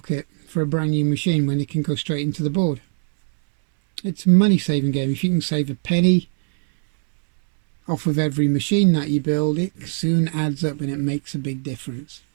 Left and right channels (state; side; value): silent; left; 65 dB below the other